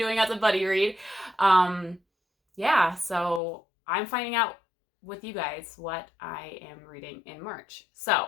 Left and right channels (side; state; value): right; drops out; at 3.4 s